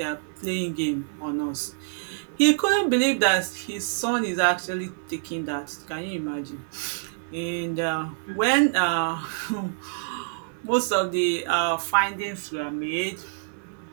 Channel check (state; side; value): silent; left; 61 dB below the other